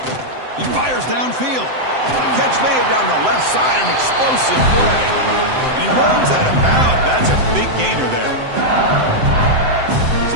He fires downfield. Catch made down the left side, an explosive play. And he runs out of bounds. That's a big gainer there.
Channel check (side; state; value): left; late; 7.8 ms